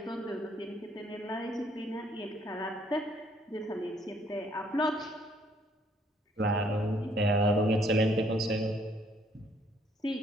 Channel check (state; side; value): normal; both; correlation 0.66